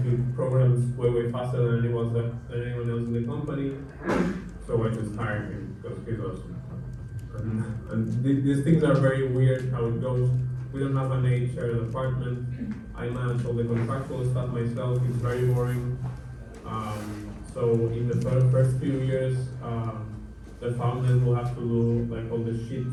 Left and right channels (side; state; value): both; identical; correlation 1.00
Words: programs way faster than anyone else in the company. So I just hired him because he's awesome. And these things are very weird how it goes. We don't have an HR department. I manage all the contractual stuff myself. It's very boring. So in the first few years, the founders will have to do like all the shit